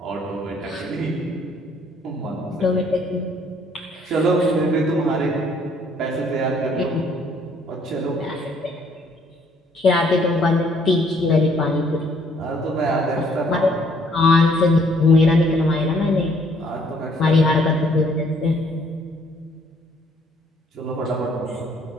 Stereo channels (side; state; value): both; normal; correlation 0.64